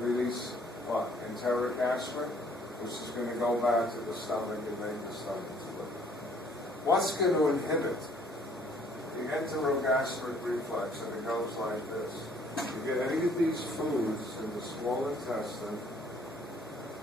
what? Enteric aspirin, which is going to go back to the stomach and make the stomach split. What's going to inhibit the enterogastric reflex? And it goes like this. You get any of these foods in the small intestine,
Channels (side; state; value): both; normal; correlation 0.60